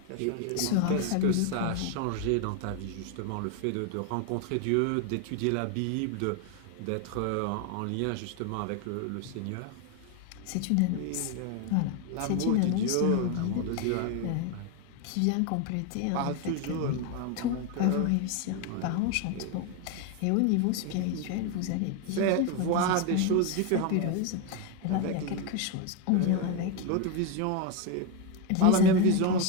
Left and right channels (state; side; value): different; both; correlation 0.02